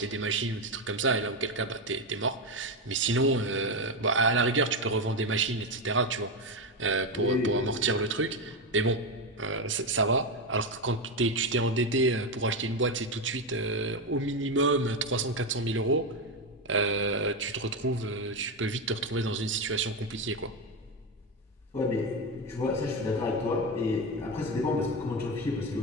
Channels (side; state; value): both; normal; correlation 0.12